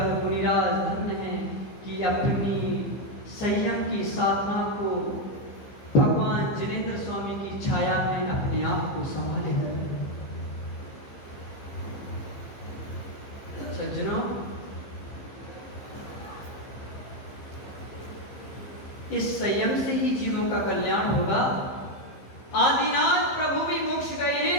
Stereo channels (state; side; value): late; right; 15 ms